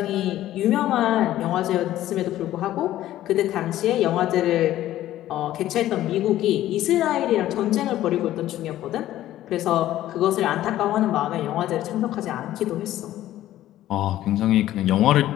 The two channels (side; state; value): right; quieter; 13.7 dB